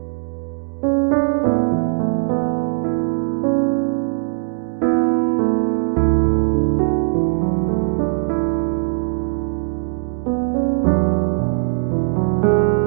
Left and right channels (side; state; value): left; silent; digital silence